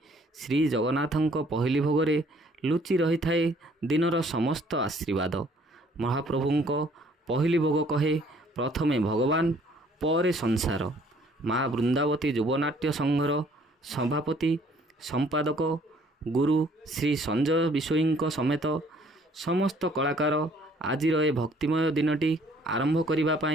ଶ୍ରୀ ଜଗନ୍ନାଥଙ୍କ ପହିଲି ଭୋଗରେ ଲୁଚି ରହିଥାଏ ଦିନର ସମସ୍ତ ଆଶୀର୍ବାଦ। ମହାପ୍ରଭୁଙ୍କ ପହିଲି ଭୋଗ କହେ ପ୍ରଥମେ ଭଗବାନ ପରେ ସଂସାର। ମା ବୃନ୍ଦାବତୀ ଯୁବନାଟ୍ୟ ସଂଘର ସଭାପତି ସମ୍ପାଦକ ଗୁରୁ ଶ୍ରୀ ସଞ୍ଜୟ ବିଷୋୟୀଙ୍କ ସମେତ ସମସ୍ତ କଳାକାର ଆଜିର ଏ ଭକ୍ତିମୟ ଦିନଟି ଆରମ୍ଭ କରିବା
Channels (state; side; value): normal; both; correlation 0.60